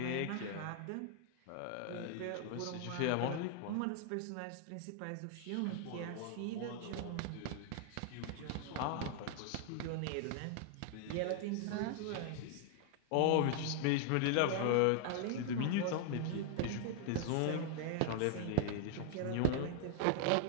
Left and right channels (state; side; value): different; both; correlation 0.00